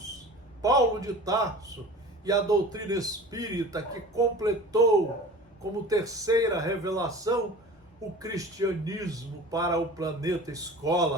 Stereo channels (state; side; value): normal; both; correlation 0.39